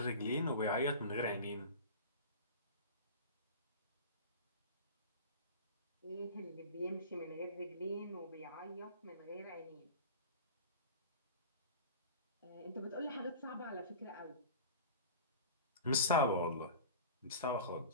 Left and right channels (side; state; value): both; inverted; correlation -0.35